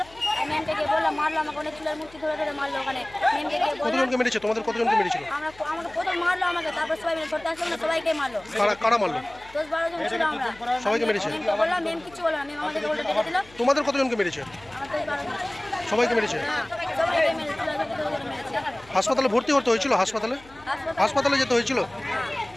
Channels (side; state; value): left; noise; hum, 24 dB below the sound